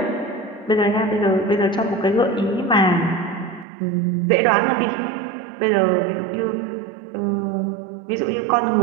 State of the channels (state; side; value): drops out; left; at 3.7 s